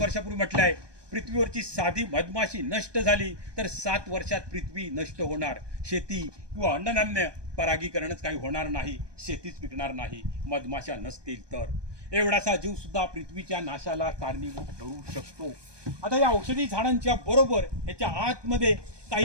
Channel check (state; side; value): late; left; 1.2 ms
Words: वर्षापूर्वी म्हटलं आहे, पृथ्वीवरची साधी मधमाशी नष्ट झाली तर 7 वर्षात पृथ्वी नष्ट होणार. शेती किंवा अन्नधान्य परागीकरणच काही होणार नाही, शेतीच पिकणार नाही मधमाशा नसतील तर. एवढासा जीव सुद्धा पृथ्वीच्या नाशाला कारणीभूत ठरू शकतो. आता या औषधी झाडांच्या बरोबर याच्या आतमध्ये